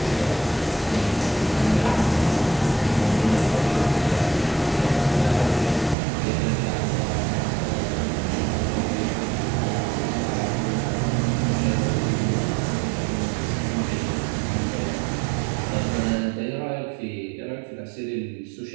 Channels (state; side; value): drops out; left; at 6.0 s